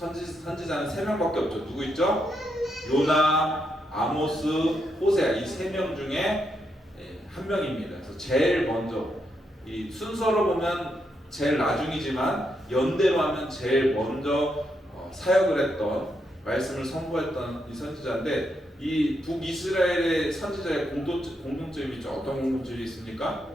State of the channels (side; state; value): both; normal; correlation 0.80